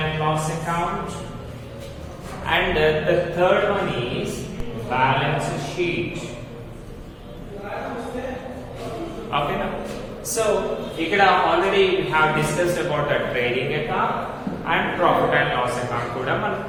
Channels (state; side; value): identical; both; correlation 1.00